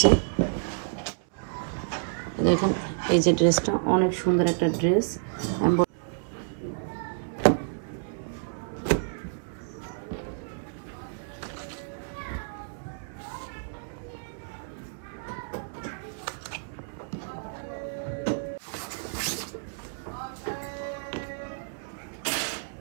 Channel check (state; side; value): silent; left; 58 dB below the other